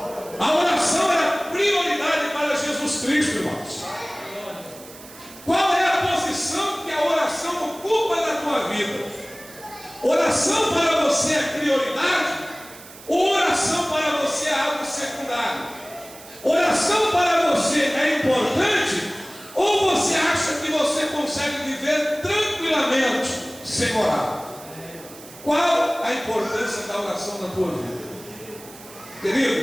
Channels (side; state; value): right; noise; hiss, 18 dB below the sound